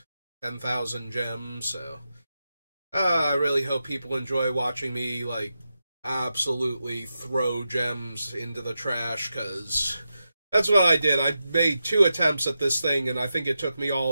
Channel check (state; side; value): inverted; both; correlation -0.89